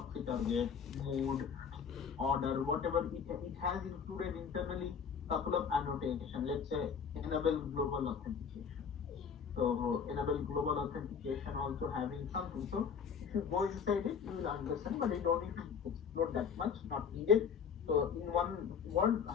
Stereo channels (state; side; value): quieter; right; 6.7 dB